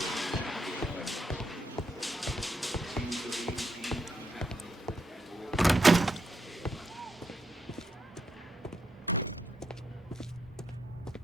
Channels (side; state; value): both; normal; correlation 0.80